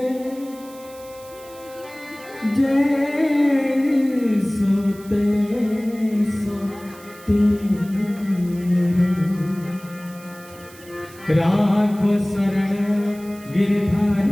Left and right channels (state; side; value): noise; right; hiss, 22 dB below the sound